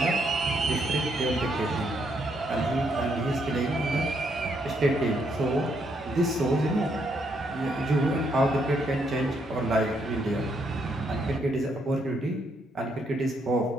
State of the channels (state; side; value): normal; both; correlation 0.75